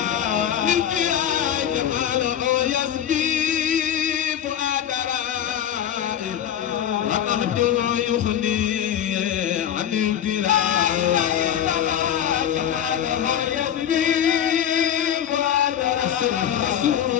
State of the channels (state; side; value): quieter; right; 10.0 dB